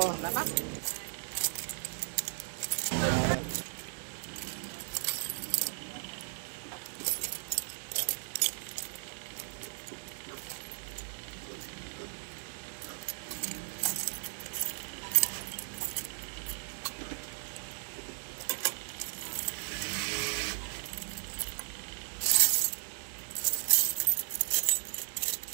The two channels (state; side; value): silent; left; 54 dB below the other